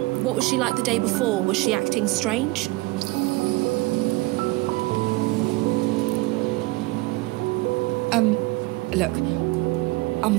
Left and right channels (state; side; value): quieter; left; 22.0 dB